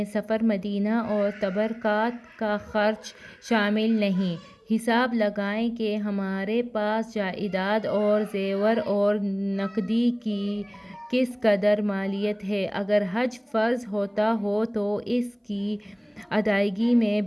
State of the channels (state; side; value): identical; both; correlation 1.00